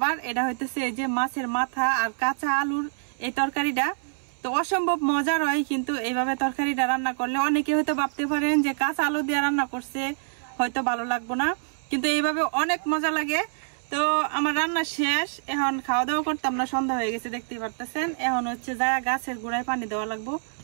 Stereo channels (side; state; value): left; silent; 61 dB below the other